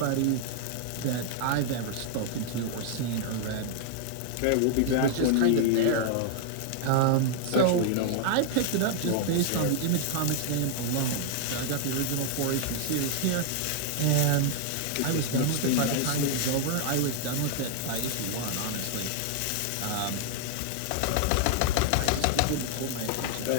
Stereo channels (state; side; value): different; both; correlation 0.00